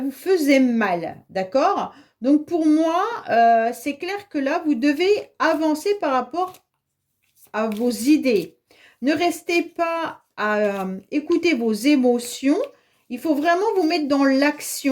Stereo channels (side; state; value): both; identical; correlation 1.00